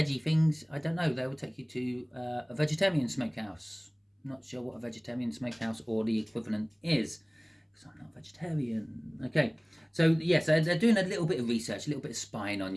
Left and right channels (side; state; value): both; identical; correlation 1.00